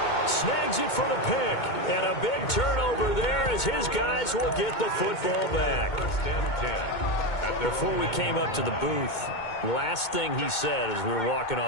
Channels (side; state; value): right; late; 2.2 ms